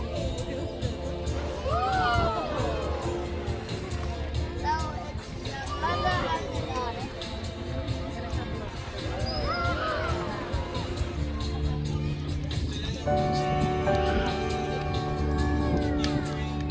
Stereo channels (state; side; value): identical; both; correlation 1.00